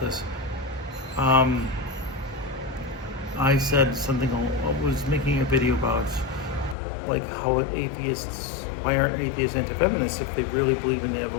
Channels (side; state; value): right; drops out; at 6.8 s